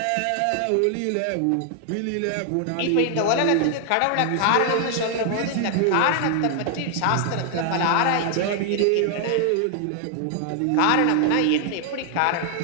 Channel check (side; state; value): both; different; correlation 0.00